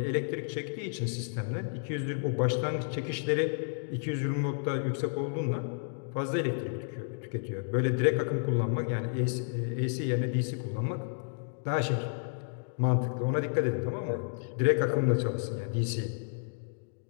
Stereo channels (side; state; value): right; silent; digital silence